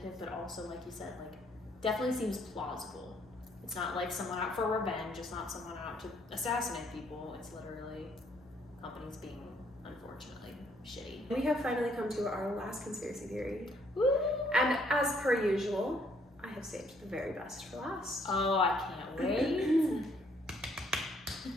but also, like you said, definitely seems plausible. It's not someone out for revenge. It's not someone out to assassinate people. It's literally companies being unfortunate. unfortunately shitty. We have finally come to our last conspiracy theory. Woo! And as per usual, I have saved the very best for last. Oh, I can't wait.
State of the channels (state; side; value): normal; both; correlation 0.67